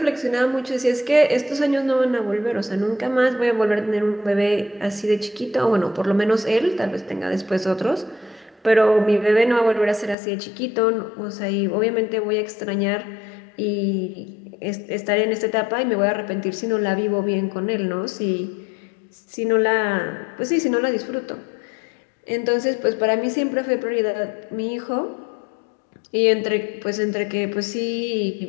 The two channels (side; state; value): right; drops out; at 10.2 s